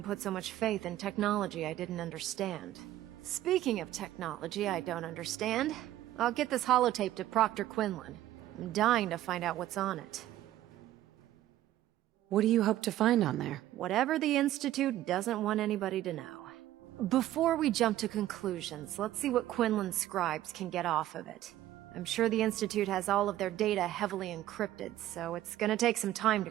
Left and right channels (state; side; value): quieter; left; 13.8 dB